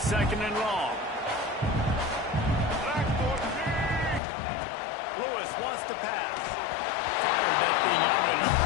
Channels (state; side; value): drops out; right; at 4.2 s